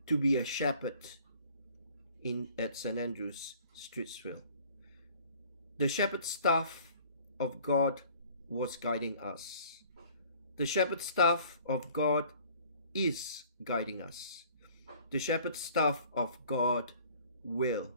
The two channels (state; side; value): inverted; both; correlation -0.53